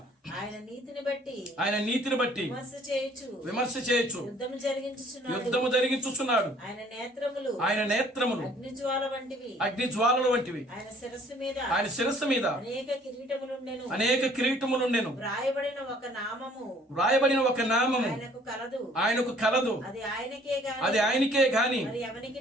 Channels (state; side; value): normal; both; correlation 0.58